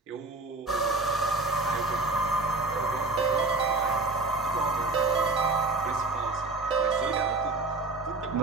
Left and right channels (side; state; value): left; quieter; 3.3 dB